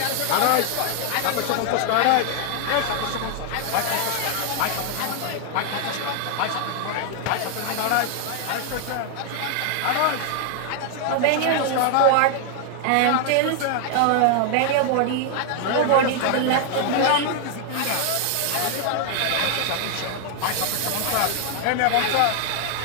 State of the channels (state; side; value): different; both; correlation 0.00